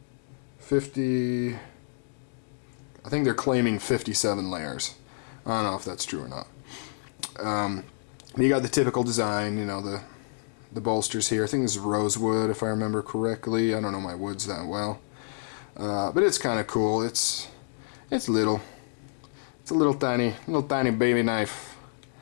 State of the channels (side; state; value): right; silent; digital silence